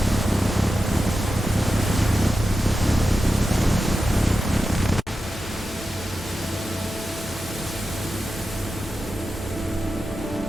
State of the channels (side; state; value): both; normal; correlation 0.91